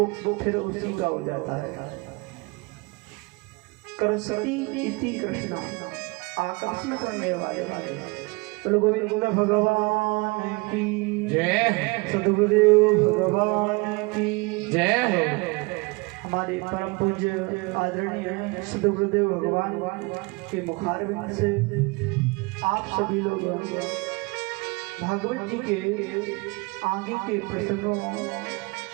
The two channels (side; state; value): left; quieter; 26.6 dB